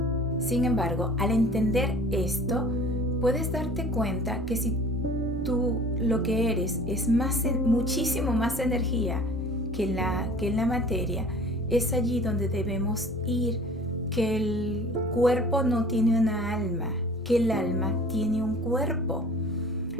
Sin embargo, al entender esto, puedes darte cuenta que si tú lo que eres es muchísimo más energía que en la materia, es allí donde debemos ir, que el cuerpo no tiene una alma, que el alma tiene un cuerpo.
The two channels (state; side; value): normal; both; correlation 0.47